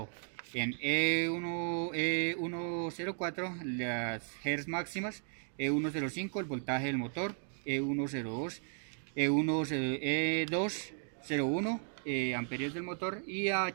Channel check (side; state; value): left; silent; 54 dB below the other